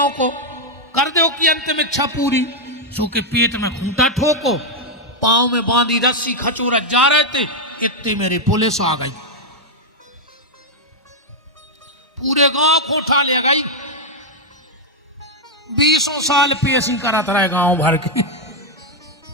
को कर दो कि अंतिम इच्छा पूरी। सो के पेट में खूंटा ठोको, पांव में बांधी रस्सी खचोरत जा रहे थे, इतने मेरी पुलिस आ गई, पूरे गांव को उठा ले गई। 20 साल पेशी करत रहे गांव भर की,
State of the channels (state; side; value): normal; both; correlation 0.00